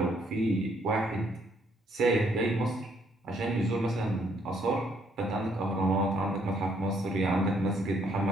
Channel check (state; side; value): normal; both; correlation 0.69